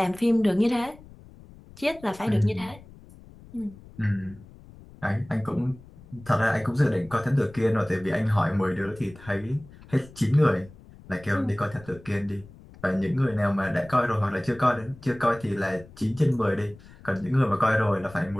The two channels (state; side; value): noise; left; rumble, 21 dB below the sound